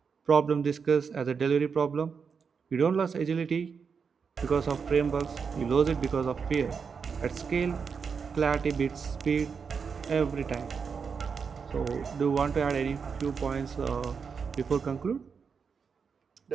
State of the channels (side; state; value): left; quieter; 5.9 dB